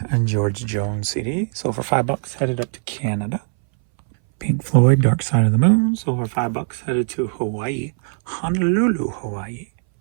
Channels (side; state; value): left; silent; 63 dB below the other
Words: and George Jones CD, sold for $5, headed up to Canada. Pink Floyd, Dark Side of the Moon, sold for $5, headed to Hawaii, Honolulu, Hawaii.